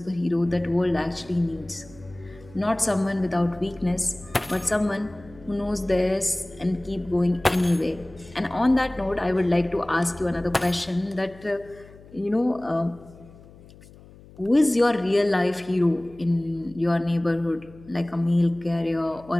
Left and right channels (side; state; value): left; noise; hum, 22 dB below the sound